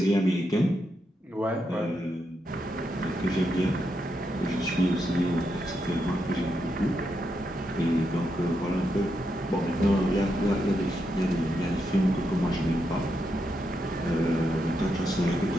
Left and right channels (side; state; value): both; normal; correlation 0.83